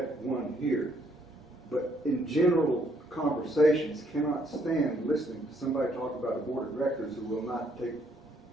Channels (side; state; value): both; normal; correlation 0.69